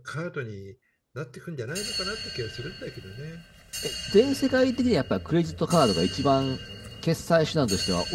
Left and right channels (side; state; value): both; identical; correlation 1.00